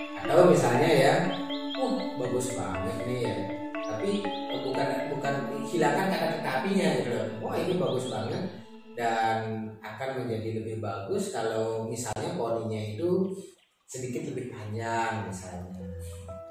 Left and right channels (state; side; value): identical; both; correlation 1.00